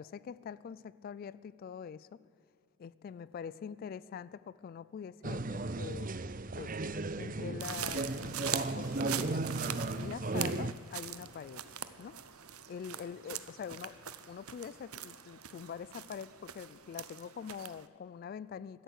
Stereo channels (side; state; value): both; normal; correlation 0.28